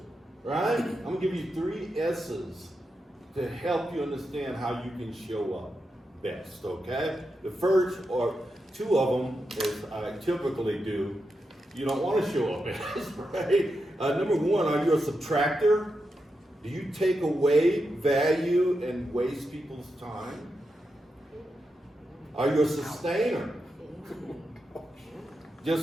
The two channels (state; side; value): normal; both; correlation 0.87